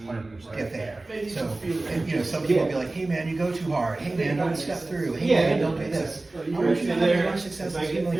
there. So, and, you know, some people will be like, hey man, you go too hard, hey man, don't step through, hey man, don't do this. I want you to have as much success as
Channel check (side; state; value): left; quieter; 3.0 dB